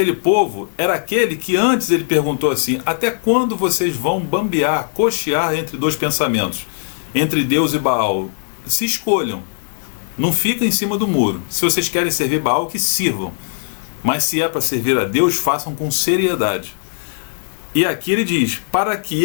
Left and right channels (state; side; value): silent; right; digital silence